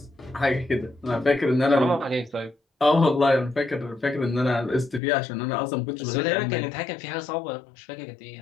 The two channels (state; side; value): drops out; right; at 5.0 s